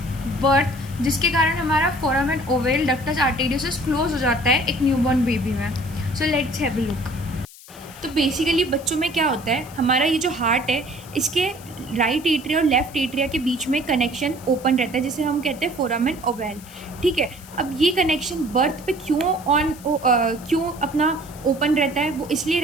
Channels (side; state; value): left; noise; hiss, 20 dB below the sound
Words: birth, जिसके कारण हमारा foramen ovale ductus arteriosus close हो जाता है एक न्यूबॉर्न बेबी में। So let's have a look. तो बेसिकली बच्चों में क्या होता है, हमारा ये जो हार्ट है इसके राइट एट्रिया और लेफ्ट एट्रिया के बीच में कनेक्शन ओपन रहता है, जिसे हम कहते हैं फोरामेन ओवल। ठीक है, अब ये कनेक्शन बर्थ पे क्यों अपना ओपन रहता है? वो इसलिए